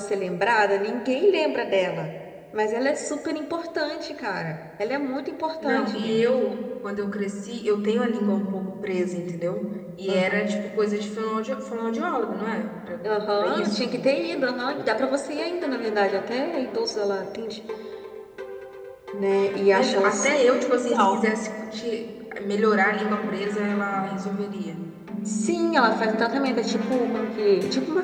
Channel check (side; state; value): both; identical; correlation 1.00